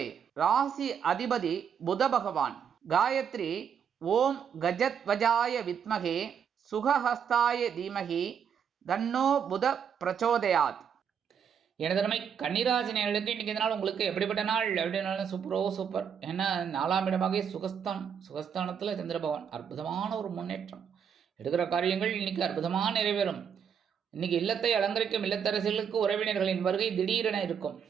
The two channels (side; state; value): left; quieter; 7.6 dB